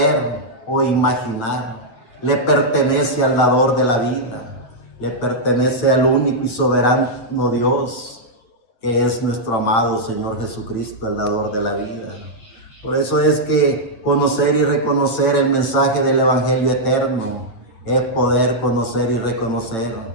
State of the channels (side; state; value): right; late; 9.0 ms